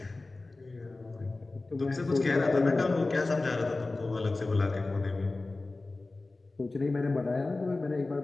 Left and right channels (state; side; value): quieter; right; 3.3 dB